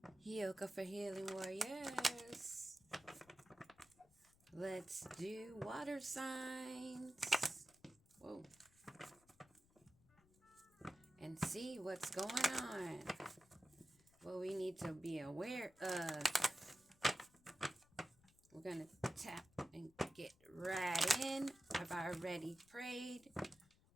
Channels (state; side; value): noise; left; rumble, 29 dB below the sound